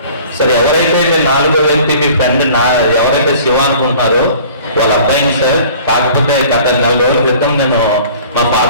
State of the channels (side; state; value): both; inverted; correlation -0.48